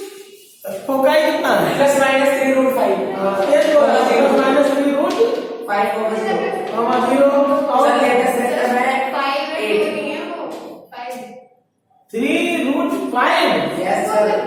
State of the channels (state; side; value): identical; both; correlation 1.00